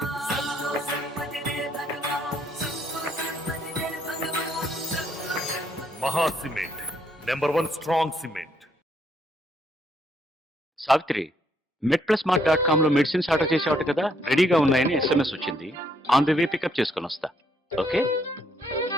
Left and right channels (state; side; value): normal; both; correlation 0.71